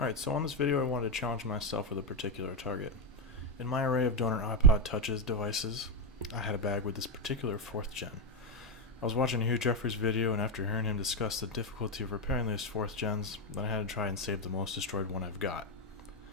Alright, so on this video I wanted to challenge myself with a particular target. In my array of donor iPod Touches devices, I had a bag with this particular 4th gen. I was watching Hugh Jeffrey's video, and after hearing him discuss the difficulty of repairing these 4th gens, then I had to try and save the most destroyed one I've got.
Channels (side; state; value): both; normal; correlation 0.06